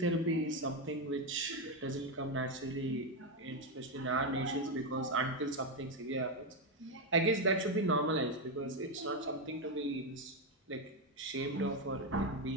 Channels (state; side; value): normal; both; correlation 0.07